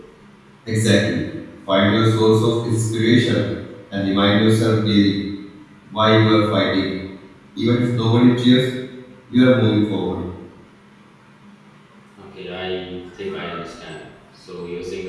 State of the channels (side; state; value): both; identical; correlation 1.00